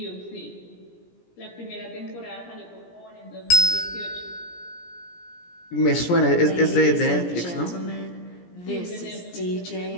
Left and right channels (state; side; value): late; right; 17 ms